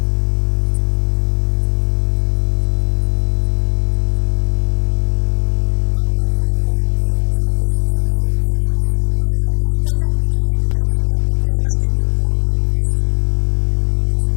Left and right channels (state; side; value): silent; right; 66 dB below the other